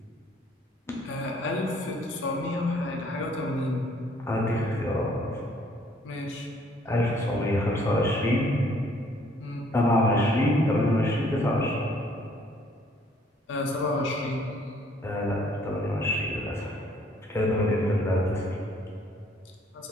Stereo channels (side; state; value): both; normal; correlation 0.62